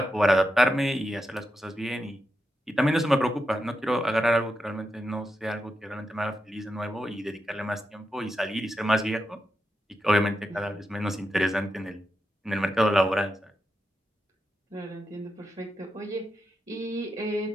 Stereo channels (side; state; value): both; normal; correlation 0.87